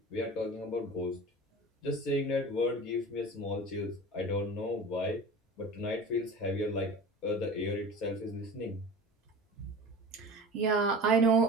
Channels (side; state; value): both; normal; correlation 0.36